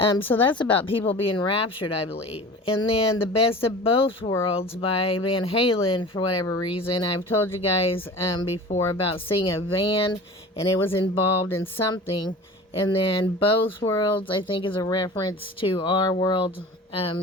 So that's about people being raptured, I believe. And then The Best of Both Worlds by Van Halen, for whatever reason. I've told you guys before about seeing a van, and it was involved in something. And then Both Worlds, I think, is a reference to our world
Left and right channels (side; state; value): both; normal; correlation 0.38